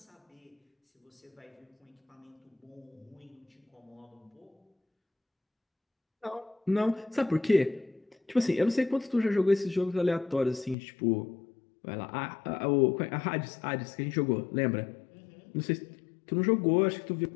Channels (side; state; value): right; drops out; at 10.8 s